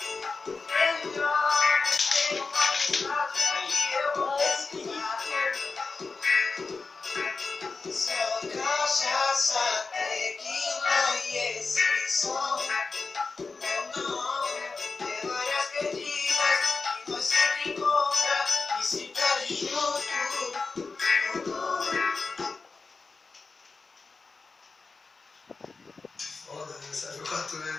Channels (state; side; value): quieter; right; 4.2 dB